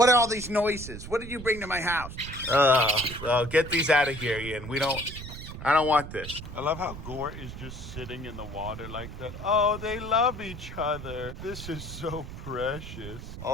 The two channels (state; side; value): noise; right; rumble, 11 dB below the sound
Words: are all these noises? What did you bring to my house? Well, get these out of here, Ian. I don't want this. I love how Gore is just sitting in the water like that. Oh, they love each other. This is so precious.